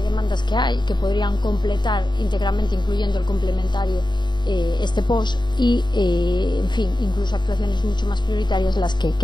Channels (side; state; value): right; late; 0.22 ms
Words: demandas que hay, que podrían completar íntegramente, incluyendo el complementario, este POS, y en fin, incluso actuaciones mucho más prioritarias